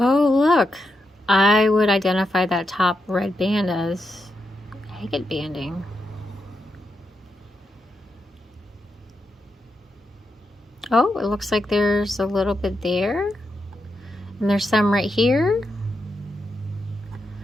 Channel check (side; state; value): both; normal; correlation 0.85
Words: look, I would identify that top red band as agate banding. Oh, it looks like there's a little bit there. And there's some right here.